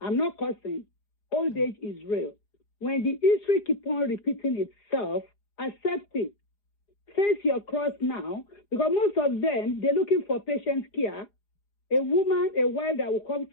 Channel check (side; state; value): right; late; 4.9 ms